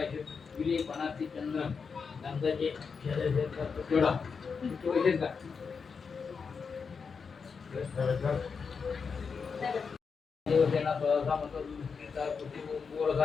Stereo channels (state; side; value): quieter; right; 5.6 dB